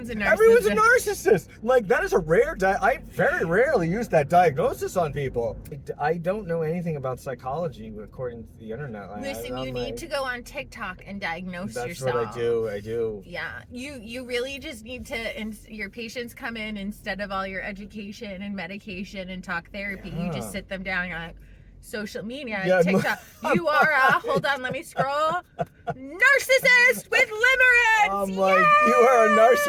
a narcissist. Everyone's a narcissist. Like, that is a rare. I very rarely use that diagnosis on people. I don't know anything about psychology according to the internet. Listen, you need to go on TikTok and diagnose That's yourself. what I do. I do. Yeah, you really just need to. Your patients come in instead of all your education and medication and talk therapy. You Yeah. just sit them down. You're like, social media, Yeah, TikTok. You are a hold on, let me scroll. Narcissist with limerence. I'm like, you are a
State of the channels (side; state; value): both; identical; correlation 1.00